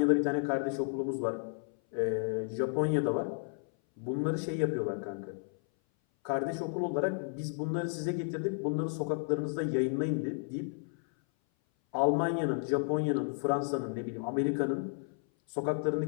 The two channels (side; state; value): right; silent; 56 dB below the other